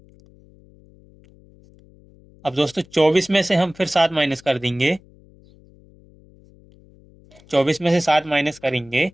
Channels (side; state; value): left; noise; hum, 27 dB below the sound